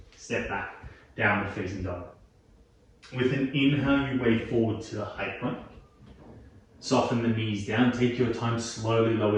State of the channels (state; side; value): identical; both; correlation 1.00